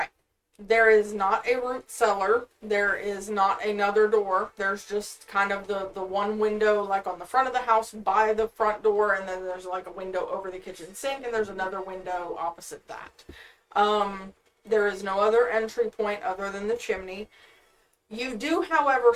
There is not a root cellar. There is not another door. There's just kind of the one window like on the front of the house by the front door, and then there's like a window over the kitchen sink, and there's another window opposite that. There is no other entry point other than the chimney. You do, however,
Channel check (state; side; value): identical; both; correlation 1.00